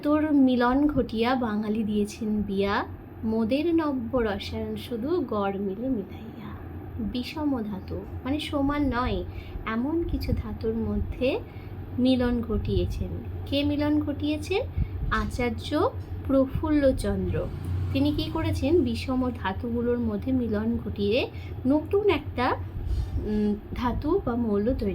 মিলন ঘটিয়া বাঙালি দিয়েছেন বিয়া, মোদের নব্য রসায়ন শুধু গড় মিলে মিলাইয়া। বিষম ধাতু মানে সমান নয়, এমন কিছু ধাতুর মধ্যে মিলন ঘটিয়েছেন। কে মিলন ঘটিয়েছেন? আচার্য প্রফুল্লচন্দ্র। তিনি কি করেছেন, বিষম ধাতুগুলোর মধ্যে মিলন ঘটিয়ে নতুন একটা ধাতু বা মৌল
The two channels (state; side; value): identical; both; correlation 1.00